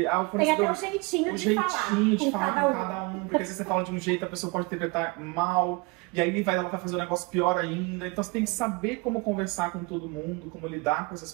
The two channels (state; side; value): quieter; left; 27.1 dB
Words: o Tem até um jeitinho de falar com cada um, porque se você fala de um jeito, a pessoa pode interpretar mal, e aí ela vai fazer um negócio pior ainda. Então você tem que saber como conversar com todo mundo, como lidar com essas